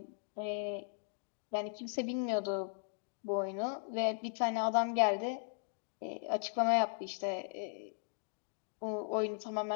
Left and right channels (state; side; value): silent; right; digital silence